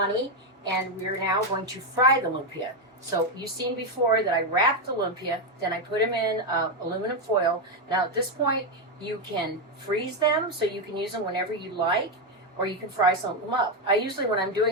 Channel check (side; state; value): both; normal; correlation 0.05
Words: and we're now going to fry the lumpia. So you've seen before that I wrapped the lumpia, then I put them in aluminum foil. Now at this point, you can freeze them so you can use them whenever you like, or you can fry some of them up. I usually, when I'm